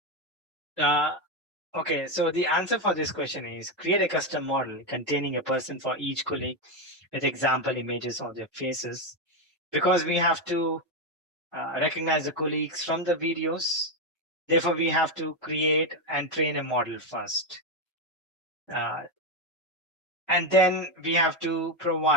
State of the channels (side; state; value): both; normal; correlation 0.08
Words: Okay, so the answer for this question is create a custom model containing a person for each colleague with example images of their faces, because we have to recognize the colleagues from the videos. Therefore, we have to create and train a model first. And then we have to